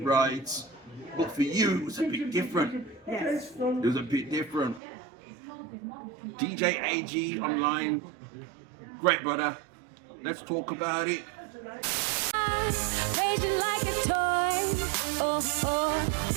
right? But for you, it was a bit different. Yes. It was a bit different. DJ AG online, great brother. Let's talk about it. Raging like a toy.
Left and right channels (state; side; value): drops out; left; at 4.8 s